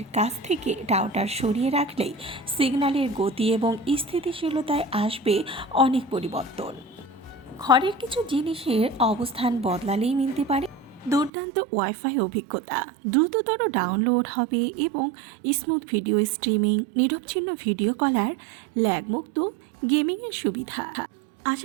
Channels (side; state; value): left; drops out; at 11.3 s